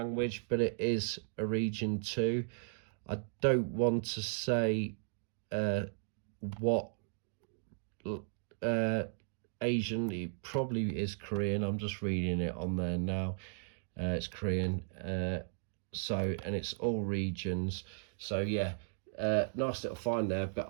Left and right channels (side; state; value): left; silent; digital silence